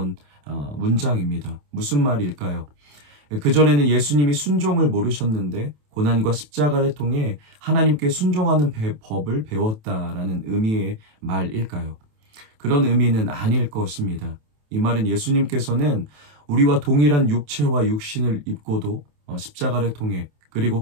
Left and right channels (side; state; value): left; late; 27 ms